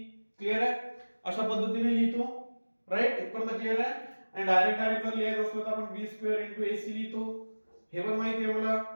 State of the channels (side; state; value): both; inverted; correlation -1.00